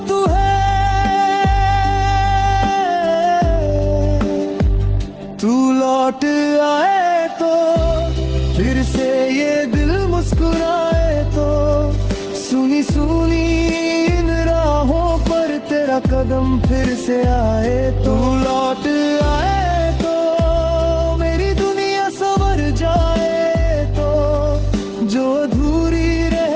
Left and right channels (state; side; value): identical; both; correlation 1.00